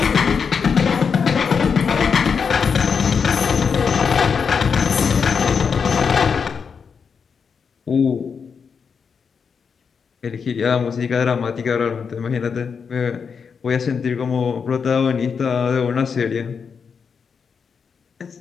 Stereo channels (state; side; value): quieter; right; 6.1 dB